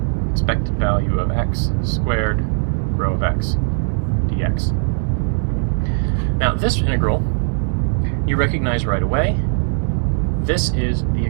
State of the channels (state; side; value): silent; left; 66 dB below the other